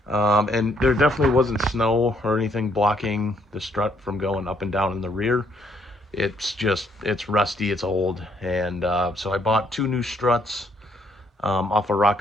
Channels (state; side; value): normal; both; correlation 0.69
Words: And there definitely wasn't snow or anything blocking the strut from going up and down in the rear. It's rusty, it's old, and so I bought two new struts off of